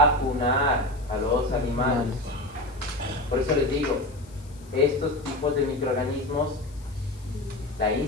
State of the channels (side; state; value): left; noise; hiss, 26 dB below the sound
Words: a los animales. Por eso les digo, estos tipos de microorganismos, la